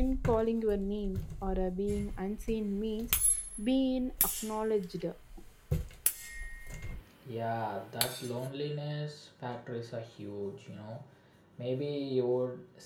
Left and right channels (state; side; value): identical; both; correlation 1.00